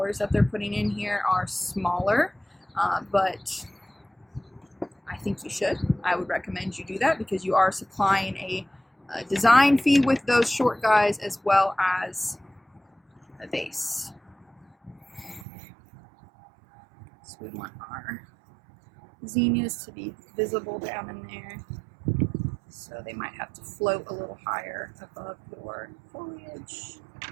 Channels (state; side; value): drops out; left; at 15.5 s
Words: that they're putting in here are smaller, but I think you should. I would recommend you do that because you are supplying a design fee with those short guys as well as a vase. So we want our zinnias to be visible down in there. So they might have to float a little higher above your foliage.